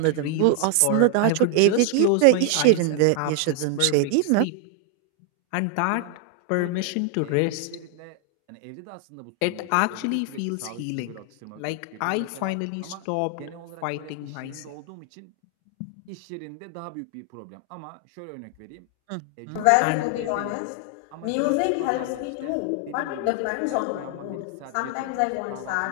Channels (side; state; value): both; different; correlation 0.00